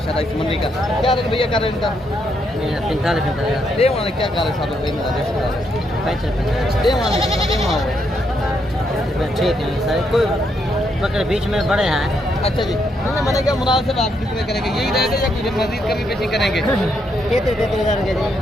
इस मंडी का। क्या रेट भैया कर रहे हैं इनका? 45 दे वाले क्या कर रहे साहब ठीक है सर। कोई बकरे बीच में बड़े हैं। अच्छा जी, मैंने क्या मुनासिब आप कितने करेंगे? यही रेट है या कुछ मजीद कभी पेशी करेंगे?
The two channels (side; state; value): both; normal; correlation 0.77